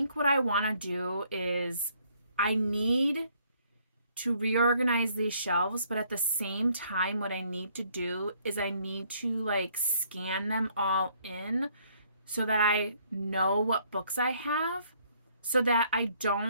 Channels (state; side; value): inverted; both; correlation -0.65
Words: what I want to do is I need to reorganize these shelves, but at the same time, what I need to do is I need to like scan them all in so that I know what books I have, so that I